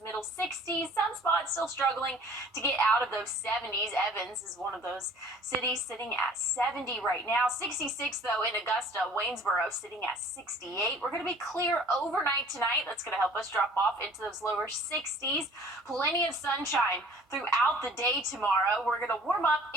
60s. Some spots still struggling to get out of those 70s. Evans is one of those cities sitting at 70 right now. 66, though, in Augusta. Waynesboro sitting at 68. We're going to be clear overnight tonight. That's going to help us drop off into those lower 60s. Plenty of sunshine throughout the day tomorrow. We're going to warm up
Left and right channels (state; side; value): normal; both; correlation 0.51